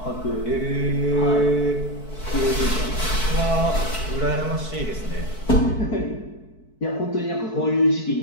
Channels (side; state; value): right; late; 4.6 ms